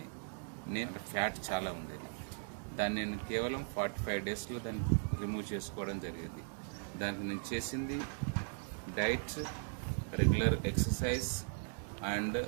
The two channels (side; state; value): left; silent; 52 dB below the other